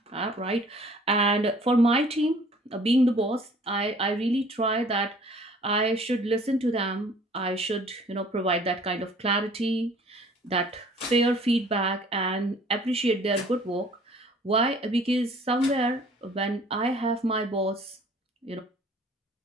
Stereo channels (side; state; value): both; normal; correlation 0.53